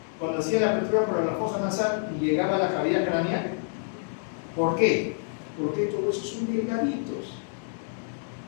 cuando hacían la apertura para la fosa nasal y llegaba a la cavidad craneal? ¿Por qué? Porque estos huesos son delgaditos.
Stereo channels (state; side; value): silent; right; 59 dB below the other